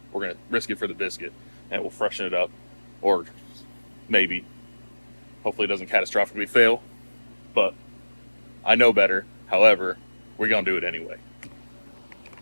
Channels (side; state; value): both; inverted; correlation -1.00